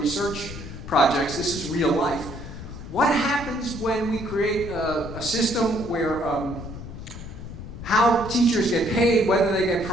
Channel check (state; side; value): noise; left; rumble, 11 dB below the sound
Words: projects, this is real life. What happens when we create a system where how teachers get paid, whether they get